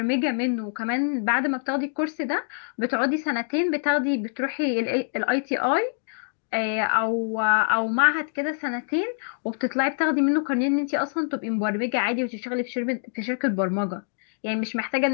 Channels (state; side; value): silent; right; digital silence